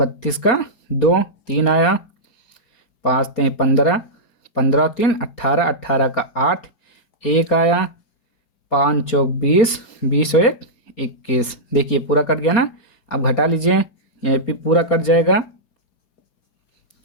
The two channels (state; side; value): late; right; 4.3 ms